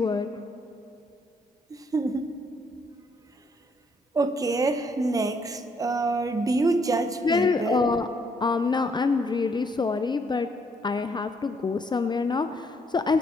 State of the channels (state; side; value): normal; both; correlation 0.70